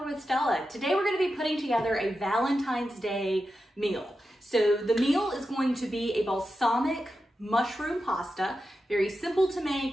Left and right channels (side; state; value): both; normal; correlation 0.90